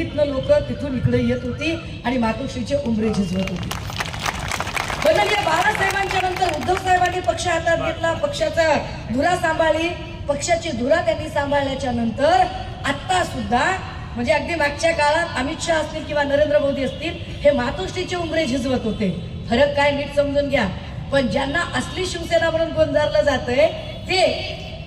लोक तिथून इकडे येत होती आणि मातोश्रीचे उंबरे झिजवत होती. वंदनीय बाळासाहेबांच्या नंतर उद्धव साहेबांनी पक्ष हातात घेतला, पक्षाचा धुरा सांभाळली. पक्षाची धुरा त्यांनी सांभाळल्याच्या नंतर आता सुद्धा, म्हणजे अगदी मागच्या काळात अमित शहा असतील किंवा नरेंद्र मोदी असतील, हे मातोश्रीचे उंबरे झिजवत होते. फरक काय नीट समजून घ्या. पण ज्यांना असली शिवसेना म्हणून गोंजारलं जातंय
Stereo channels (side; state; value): both; identical; correlation 1.00